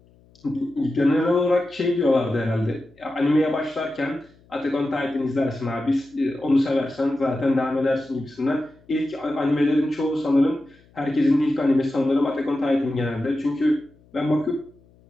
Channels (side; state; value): left; noise; hum, 30 dB below the sound